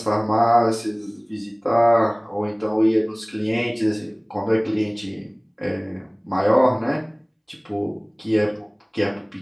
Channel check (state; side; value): identical; both; correlation 1.00